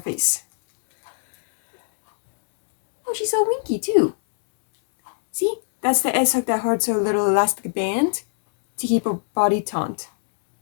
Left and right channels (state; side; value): silent; right; digital silence